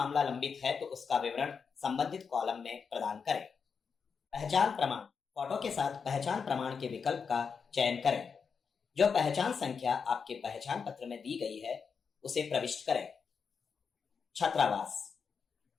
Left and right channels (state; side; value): quieter; right; 5.9 dB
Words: लंबित है तो उसका विवरण संबंधित कॉलम में प्रदान करें। पहचान प्रमाण, फोटो के साथ पहचान प्रमाण के विकल्प का चयन करें। जो पहचान संख्या आपके पहचान पत्र में दी गई है उसे प्रविष्ट करें। छात्रावास,